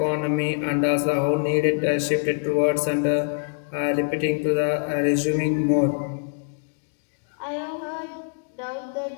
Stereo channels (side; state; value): right; silent; 62 dB below the other